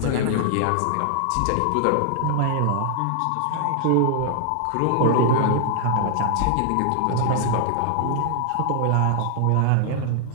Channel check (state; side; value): different; both; correlation -0.01